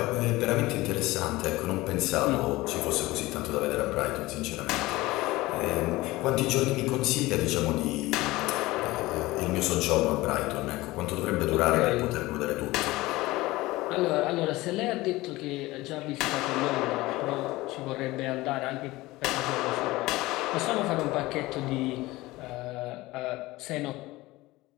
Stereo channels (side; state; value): right; quieter; 19.5 dB